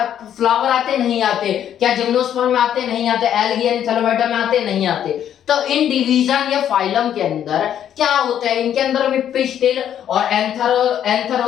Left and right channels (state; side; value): quieter; right; 10.0 dB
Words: फ्लावर आते? नहीं आते। क्या जिम्नोस्पर्म में आते? नहीं आते। एल्गी यानी थैलोफाइटा में आते? नहीं आते। तो इन डिवीजन या फाइलम के अंदर क्या होता है? इनके अंदर भी पिस्टिल और एंथर